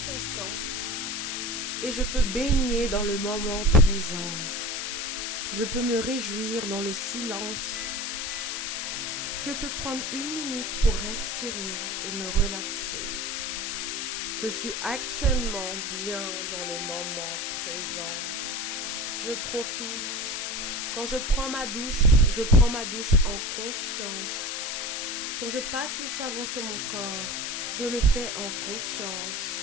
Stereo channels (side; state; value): left; noise; hiss, 2 dB below the sound